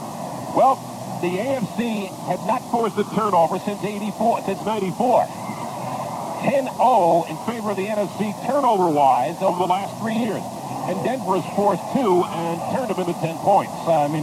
Well, the AFC had not forced a turnover since 94. 10-0 in favor of the NFC turnover-wise over the last 3 years. And Denver has forced 2 and turned them into 10 points. I mean,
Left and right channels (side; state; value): both; identical; correlation 1.00